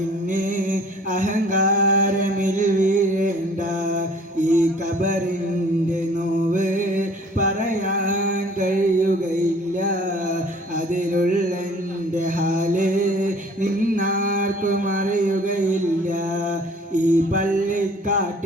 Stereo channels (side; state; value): both; normal; correlation 0.52